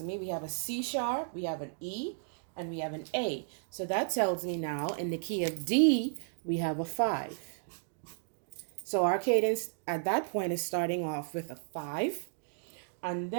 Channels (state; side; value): silent; left; digital silence